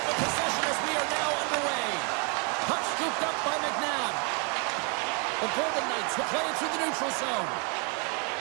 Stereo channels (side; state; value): left; quieter; 35.9 dB